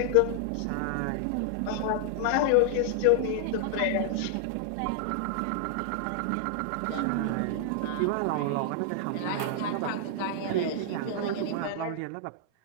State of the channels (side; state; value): both; different; correlation -0.01